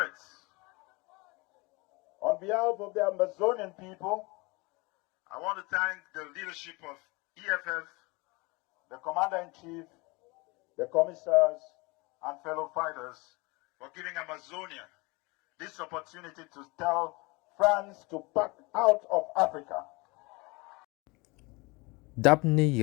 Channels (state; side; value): quieter; right; 25.9 dB